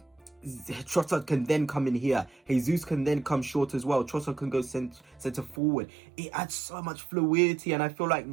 Trossard can then come in here. Jesus can then come short as well. Trossard can go centre forward. It adds so much fluidity, and I feel like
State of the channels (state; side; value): drops out; left; at 5.6 s